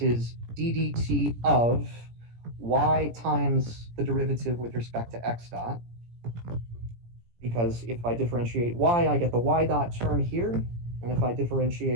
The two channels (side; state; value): left; late; 17 ms